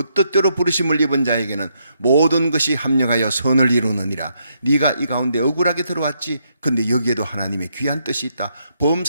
뜻대로 부르심을 입은 자에게는 모든 것이 합력하여 선을 이루느니라. 네가 이 가운데 억울하게 들어왔지, 근데 여기에도 하나님의 귀한 뜻이 있다.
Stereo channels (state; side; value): inverted; both; correlation -0.77